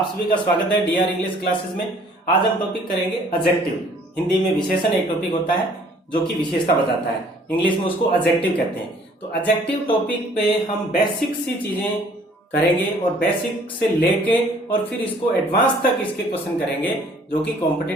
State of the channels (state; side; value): normal; both; correlation 0.57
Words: सभी का स्वागत है डीआर इंग्लिश क्लासेस में। आज हम टॉपिक करेंगे एडजेक्टिव। हिंदी में विशेषण एक टॉपिक होता है जो कि विशेषता बताता है, इंग्लिश में उसको एडजेक्टिव कहते हैं। तो एडजेक्टिव टॉपिक पे हम बेसिक सी चीजें करेंगे और बेसिक से लेके और फिर इसको एडवांस तक इसके क्वेश्चन करेंगे जो कि